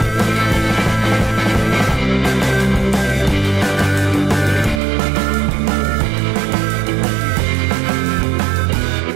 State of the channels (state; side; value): drops out; left; at 4.8 s